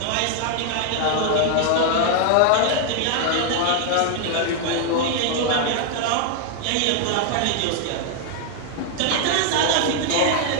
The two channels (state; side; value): different; both; correlation 0.00